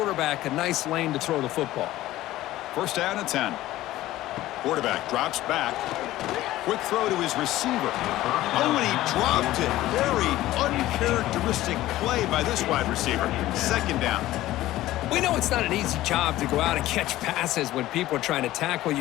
a nice lane to throw the football. 1st down and 10. Quarterback drops back. Quick throw to his receiver. Oh, and he dropped it. Very uncharacteristic play by this wide receiver. 2nd down. We know it's not an easy job to go out and catch passes when people are trying to tackle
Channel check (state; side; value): quieter; right; 15.7 dB